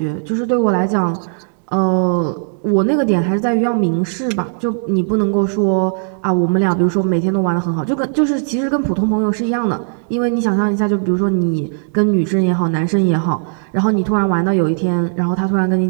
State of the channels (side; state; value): left; silent; 65 dB below the other